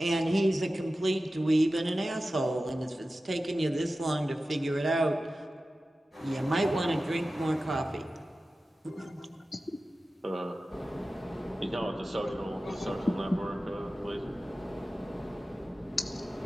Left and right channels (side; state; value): both; normal; correlation 0.95